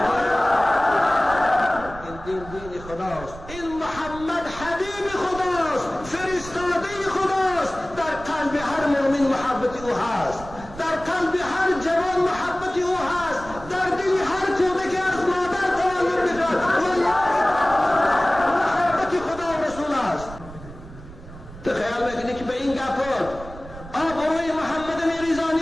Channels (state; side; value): noise; right; rumble, 15 dB below the sound